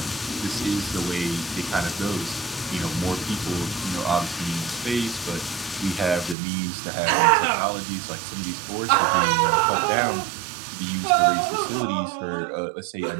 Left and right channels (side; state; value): left; drops out; at 6.4 s